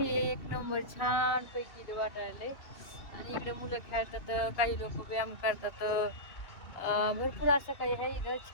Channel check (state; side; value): late; right; 2.7 ms